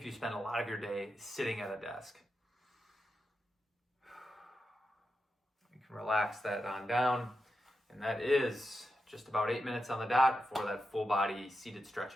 you spend a lot of your day sitting at a desk. You can relax that on down, and that is just about 8 minutes on the dot for that full body seated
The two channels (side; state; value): both; normal; correlation 0.89